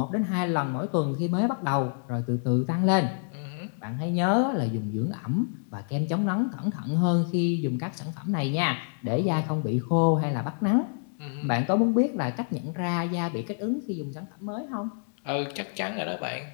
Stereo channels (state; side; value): silent; right; digital silence